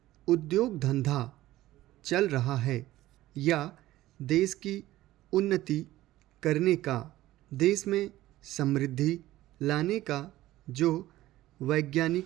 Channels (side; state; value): left; quieter; 15.8 dB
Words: उद्योग धंधा चल रहा है या देश की उन्नति करने का, देश में समृद्धि लाने का जो